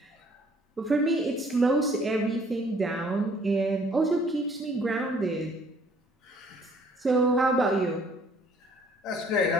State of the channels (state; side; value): normal; both; correlation 0.59